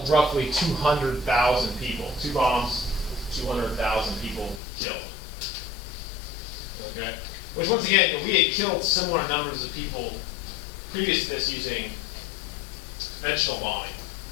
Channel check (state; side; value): drops out; right; at 4.6 s